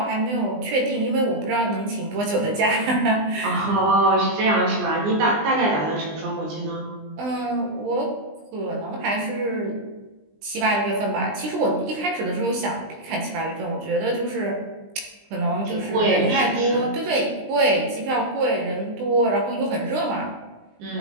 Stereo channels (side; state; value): left; late; 20 ms